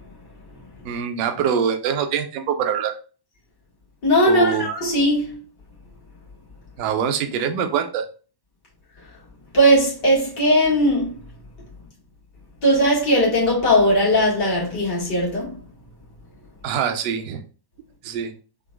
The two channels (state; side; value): late; right; 1.1 ms